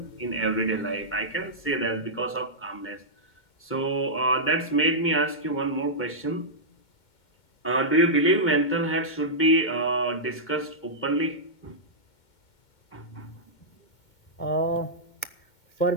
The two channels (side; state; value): right; late; 2.2 ms